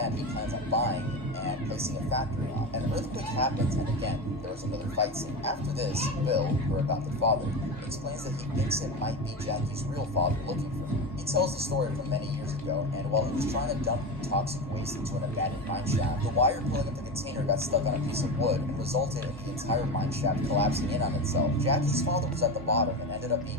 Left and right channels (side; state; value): both; normal; correlation 0.21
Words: he plans on buying and placing a factory on. An earthquake happens, and again, there was another fight scene. After this, Bill, her adopted father, explains that he thinks it might be Jackie's real father looking for her. He tells the story from many years ago, and while he was trying to dump toxic waste into an abandoned mine shaft, the wire pulling up the container got stuck on a piece of wood and resulted in the entire mine shaft collapsing in on itself. Jackie's father was at the bottom and ended up